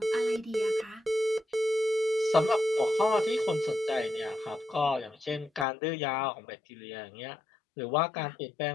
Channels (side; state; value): right; drops out; at 5.7 s